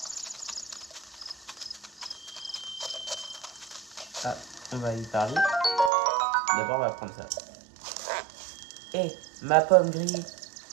Ah, on va y parler. D'abord, on va prendre ça. Hé, ma pomme grillée.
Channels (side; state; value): left; drops out; at 5.9 s